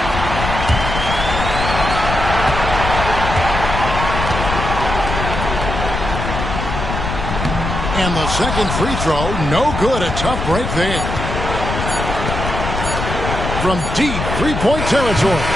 And the second free throw, no good. A tough break there. From deep 3-point territory,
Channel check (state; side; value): noise; left; rumble, 4 dB below the sound